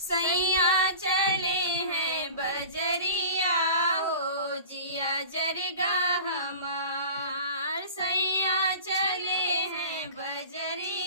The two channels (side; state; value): both; inverted; correlation -0.38